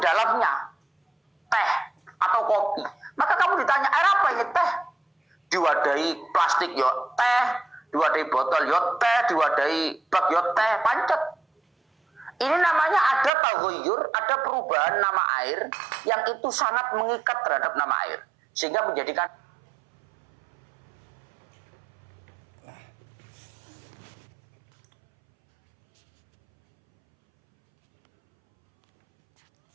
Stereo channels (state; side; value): drops out; left; at 13.3 s